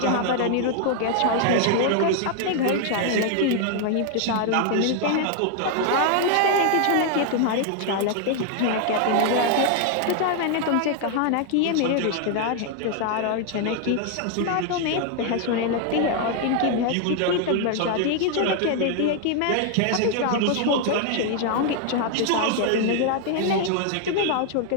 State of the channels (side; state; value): both; different; correlation 0.00